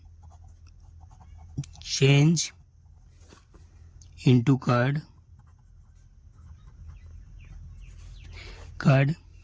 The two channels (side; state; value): both; identical; correlation 1.00